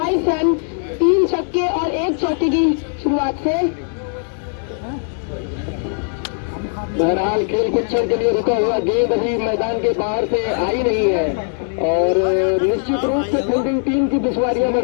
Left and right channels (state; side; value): silent; right; 66 dB below the other